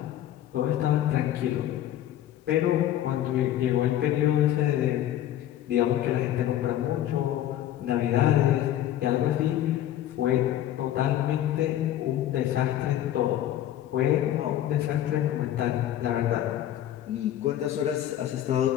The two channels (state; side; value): quieter; right; 12.1 dB